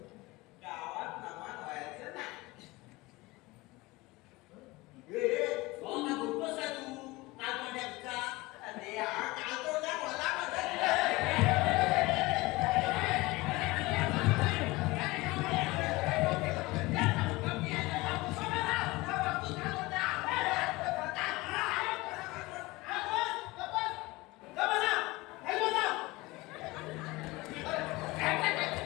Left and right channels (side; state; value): right; quieter; 21.6 dB